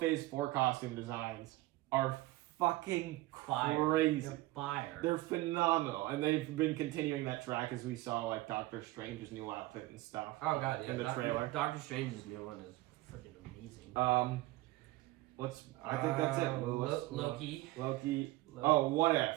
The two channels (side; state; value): left; quieter; 18.7 dB